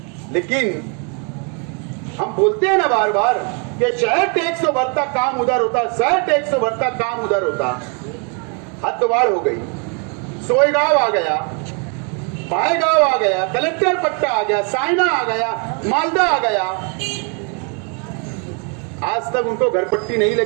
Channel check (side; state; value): left; quieter; 36.6 dB